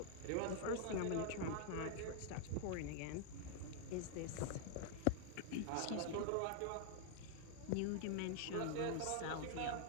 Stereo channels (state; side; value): different; both; correlation 0.00